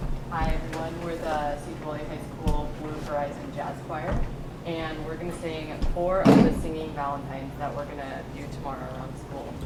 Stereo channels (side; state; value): both; identical; correlation 1.00